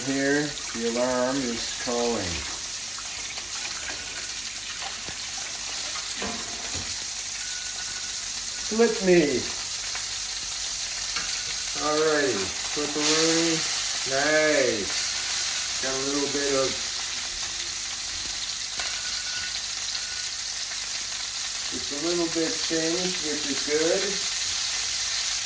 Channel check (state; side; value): noise; left; hum, 23 dB below the sound